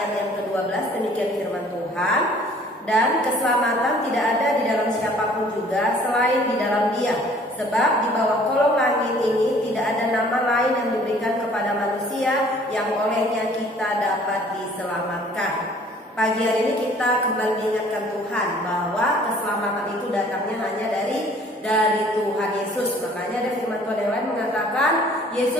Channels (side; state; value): both; normal; correlation 0.54